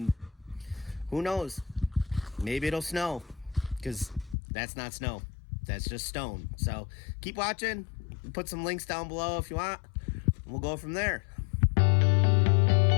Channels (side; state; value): right; drops out; at 4.4 s